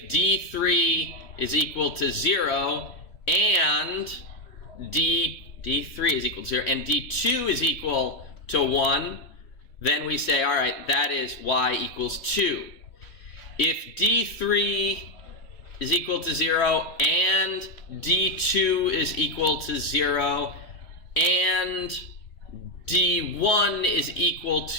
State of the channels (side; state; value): right; late; 3.1 ms